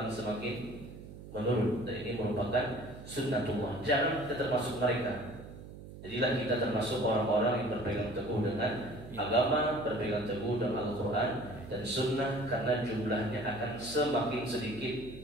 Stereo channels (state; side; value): noise; right; hum, 14 dB below the sound